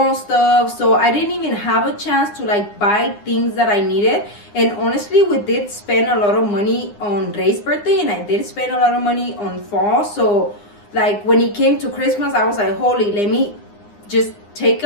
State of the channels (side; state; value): right; late; 9.8 ms